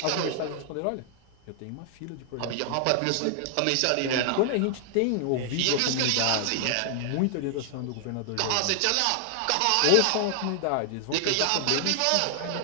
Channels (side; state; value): both; different; correlation 0.00